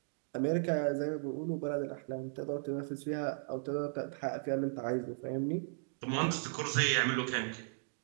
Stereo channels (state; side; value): silent; left; digital silence